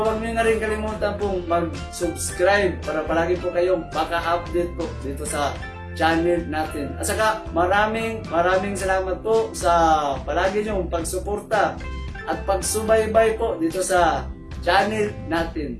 nyo na rin kalimutan po mag-subscribe para palagi po kayong maka-update po dito sa channel natin. At saka, maraming salamat po sa palagi nyong pagsuporta at pagsubaybay po dito sa channel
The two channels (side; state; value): both; identical; correlation 1.00